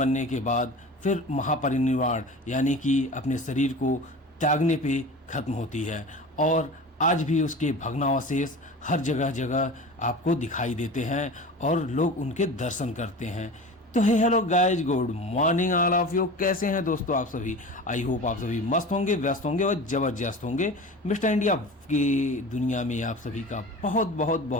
के बाद फिर महापरिनिर्वाण यानी कि अपने शरीर को त्यागने पे खत्म होती है। और आज भी उसके भग्नावशेष हर जगह जगह आपको दिखाई देते हैं और लोग उनके दर्शन करते हैं। तो hey hello guys, good morning all of you. कैसे हैं दोस्तों आप सभी? आई होप आप सभी मस्त होंगे, व्यस्त होंगे और जबरदस्त होंगे। मिस्टर इंडिया की दुनिया में आप सभी का बहुत बहुत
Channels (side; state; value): both; normal; correlation 0.35